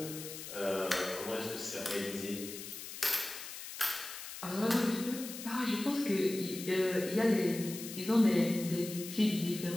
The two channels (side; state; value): left; noise; hiss, 10 dB below the sound